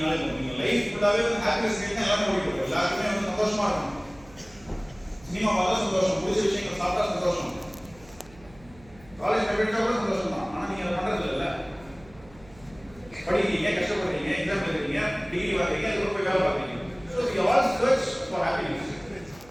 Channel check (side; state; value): right; noise; hum, 24 dB below the sound